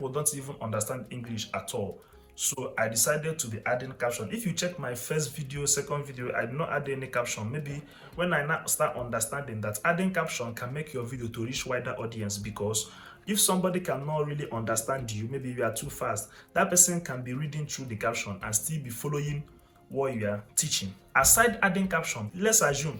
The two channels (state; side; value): identical; both; correlation 1.00